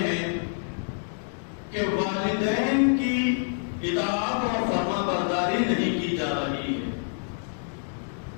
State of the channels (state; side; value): silent; right; digital silence